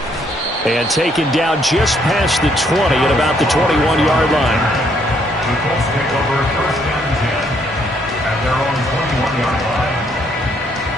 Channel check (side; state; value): both; normal; correlation 0.69